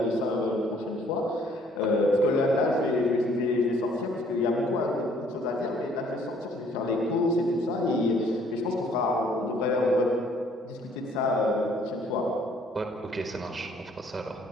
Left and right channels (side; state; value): both; normal; correlation 0.61